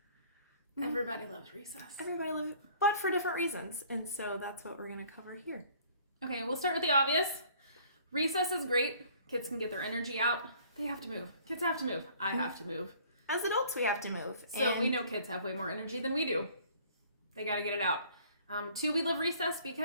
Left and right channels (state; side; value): inverted; both; correlation -0.55